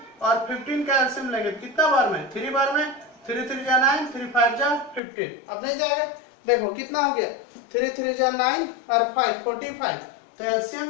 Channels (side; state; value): right; drops out; at 5.0 s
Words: और 15 का एलसीएम लेंगे, कितना बार में, 3 बार में, 3 3 जा 9, 3 5 जा 15, अब नहीं जाएगा, देखो कितना हो गया, 3 3 जा 9 और 5 45, तो